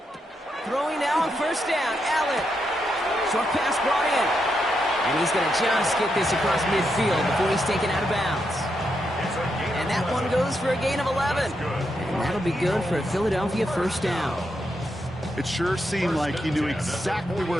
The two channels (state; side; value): normal; both; correlation 0.82